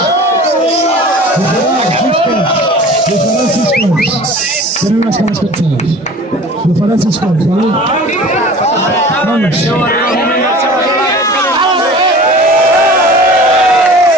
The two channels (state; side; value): normal; both; correlation 0.42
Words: Tenen unas caras cansadas. Lo farán 6 cops, ¿vale? Vamos.